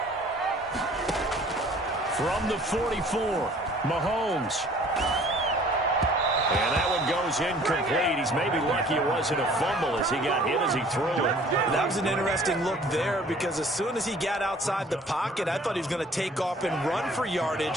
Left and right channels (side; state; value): both; normal; correlation 0.53